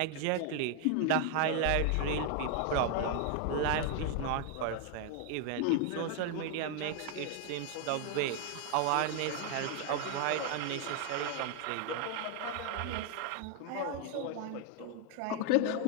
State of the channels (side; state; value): both; different; correlation 0.00